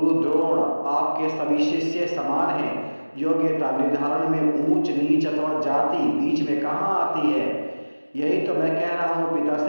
द्रोण आपके सभी शिष्य समान हैं। योग्यता निर्धारण में ऊंच नीच अथवा जाति बीच में कहाँ आती है? यही तो मैं कह रहा हूँ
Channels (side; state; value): both; inverted; correlation -1.00